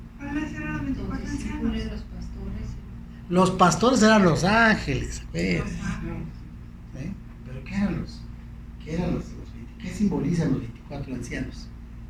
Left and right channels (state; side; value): identical; both; correlation 1.00